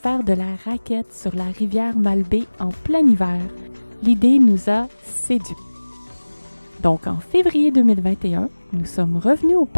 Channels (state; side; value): inverted; both; correlation -1.00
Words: de la raquette sur la rivière Malbaie en plein hiver. L'idée nous a séduits. Donc en février 2021, nous sommes revenus au